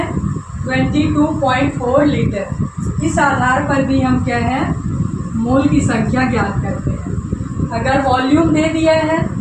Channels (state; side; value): identical; both; correlation 1.00